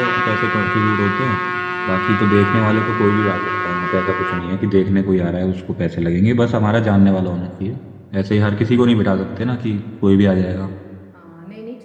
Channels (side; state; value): both; identical; correlation 1.00